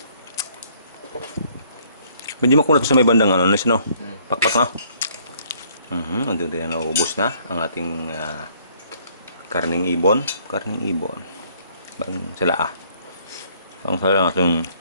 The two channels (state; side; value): inverted; both; correlation -0.63